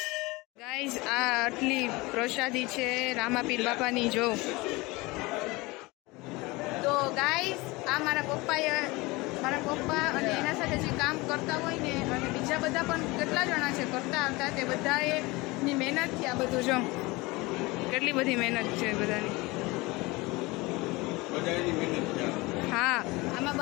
ગાઈસ આ આટલી પ્રસાદી છે રામાપીર બાપાની. જો તો ગાઈસ આ મારા પપ્પા અને એના સાથે જે કામ કરતા હોય ને અને બીજા બધા પણ કેટલા જણા છે કરતા આવતા તે બધાની મહેનતથી આ બધું. જો કેટલી બધી મહેનત છે બધાની. હા આમાં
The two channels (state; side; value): quieter; right; 23.0 dB